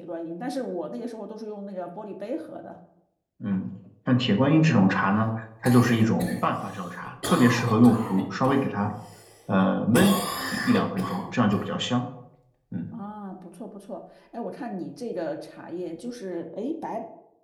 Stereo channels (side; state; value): both; identical; correlation 1.00